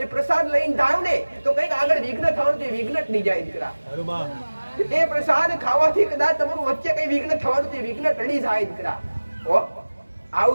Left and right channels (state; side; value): inverted; both; correlation -1.00